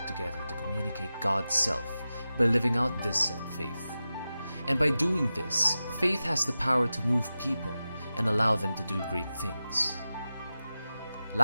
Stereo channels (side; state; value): both; inverted; correlation -0.93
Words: together to communicate God's self by living out this said faith. And by doing this, faith has the power to move people and allow them to do great things.